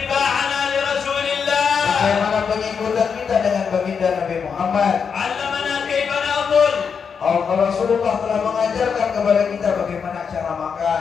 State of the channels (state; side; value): quieter; right; 6.3 dB